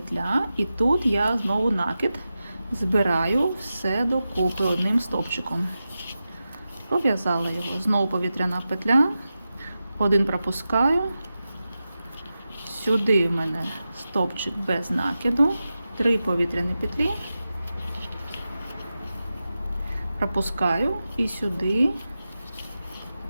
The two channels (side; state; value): both; inverted; correlation -0.92